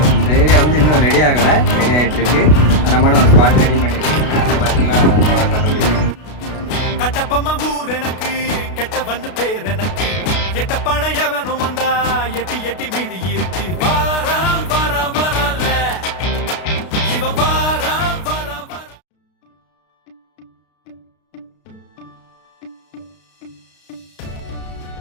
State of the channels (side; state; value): right; late; 33 ms